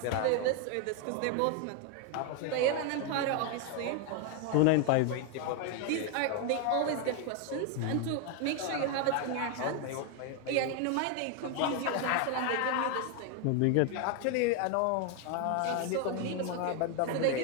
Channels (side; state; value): both; different; correlation 0.01